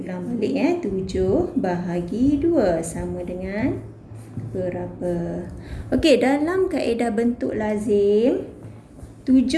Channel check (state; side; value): identical; both; correlation 1.00